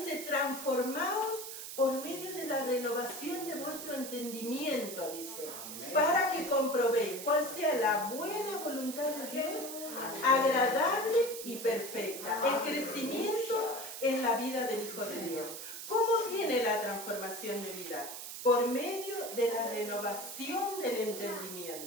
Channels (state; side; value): noise; right; hiss, 9 dB below the sound